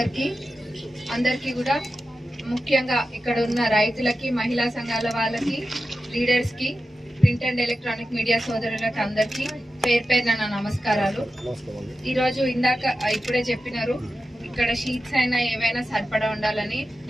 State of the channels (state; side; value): normal; both; correlation 0.92